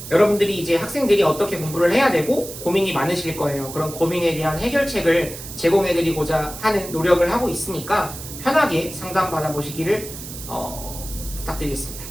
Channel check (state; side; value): noise; right; hiss, 11 dB below the sound